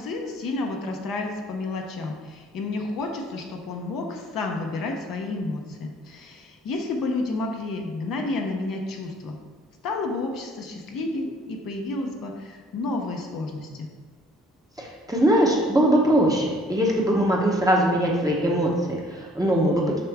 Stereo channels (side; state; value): both; normal; correlation 0.59